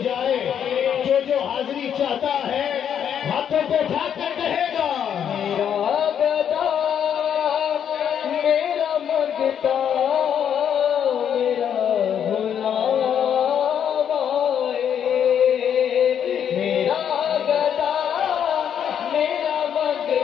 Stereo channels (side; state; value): right; quieter; 8.7 dB